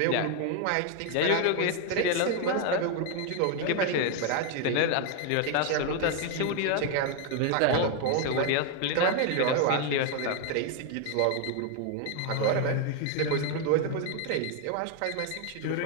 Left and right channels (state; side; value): different; both; correlation 0.01